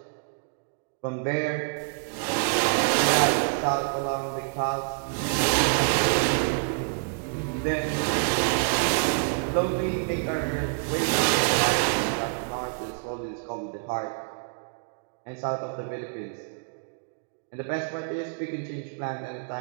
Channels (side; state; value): left; silent; digital silence